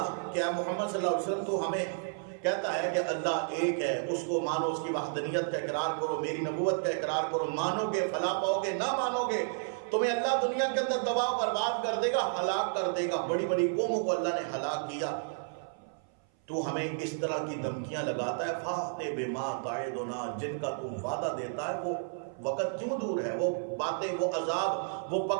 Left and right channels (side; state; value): left; silent; 56 dB below the other